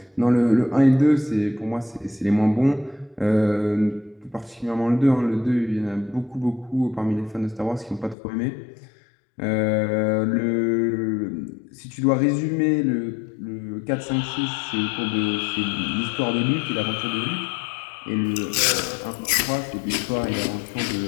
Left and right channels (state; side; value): drops out; right; at 8.2 s